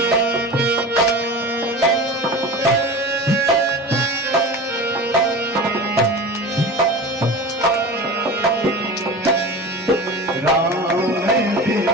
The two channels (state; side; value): normal; both; correlation 0.33